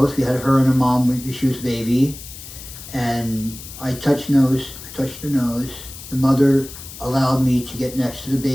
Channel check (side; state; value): left; noise; hiss, 14 dB below the sound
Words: We had her and her mom when she was a baby. And I touched her nose. The mother allowed me to get next to the